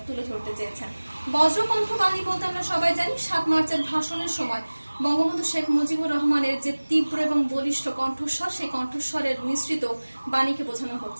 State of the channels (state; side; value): inverted; both; correlation -1.00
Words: তুলে ধরতে চেয়েছেন। বজ্রকণ্ঠ বাণী বলতে আমরা সবাই জানি ৭ মার্চের ভাষণের সময় বঙ্গবন্ধু শেখ মুজিবুর রহমানের যে তীব্র এবং বলিষ্ঠ কণ্ঠস্বর, সেই কণ্ঠস্বরের মিশ্রিত বাণীকে বোঝানো